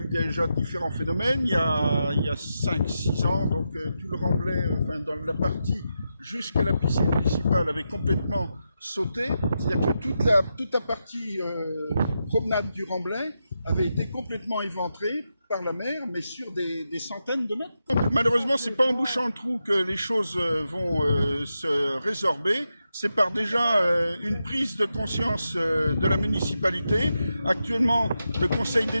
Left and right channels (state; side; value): inverted; both; correlation -0.87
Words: déjà différents phénomènes, il y a 5-6 ans, donc tout le remblai, enfin dans la partie jusqu'à la piscine municipale avait complètement sauté, c'est-à-dire que toute la partie promenade du remblai avait été complètement éventrée par la mer, mais sur des centaines de mètres. Donc, malheureusement, c'est pas en bouchant le trou que les choses vont se résorber. C'est par déjà une prise de conscience de la municipalité. Actuellement, le Conseil